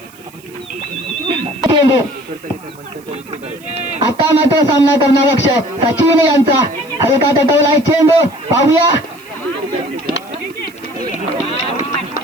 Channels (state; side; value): noise; right; hiss, 25 dB below the sound